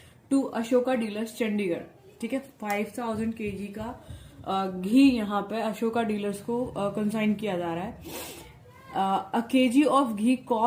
टू अशोका डीलर्स चंडीगढ़। ठीक है, 5,000 kg का घी यहाँ पे अशोका डीलर्स को कंसाइन किया जा रहा है। A kg of ghee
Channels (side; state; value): both; identical; correlation 1.00